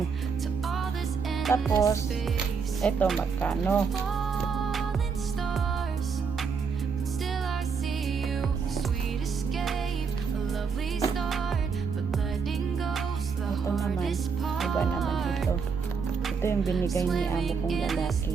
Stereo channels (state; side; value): quieter; left; 5.7 dB